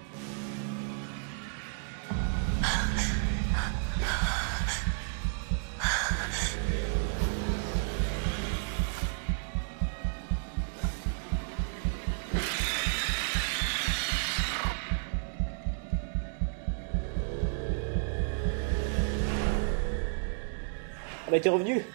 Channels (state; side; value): silent; left; digital silence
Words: Elle a été revenue.